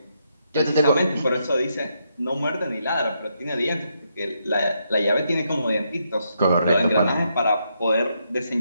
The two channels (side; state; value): both; inverted; correlation -0.79